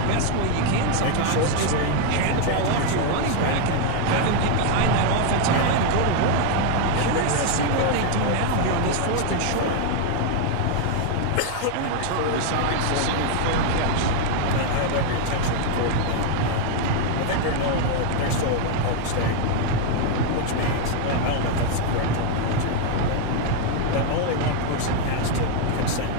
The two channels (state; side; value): different; both; correlation 0.00